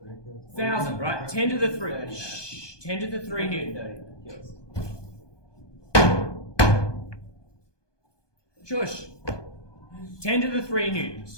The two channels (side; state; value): right; late; 1.2 ms